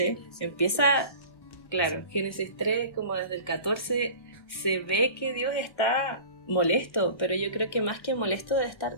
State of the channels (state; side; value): late; right; 1.1 ms